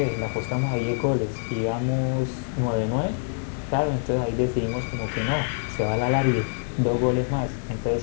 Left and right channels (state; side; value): silent; right; digital silence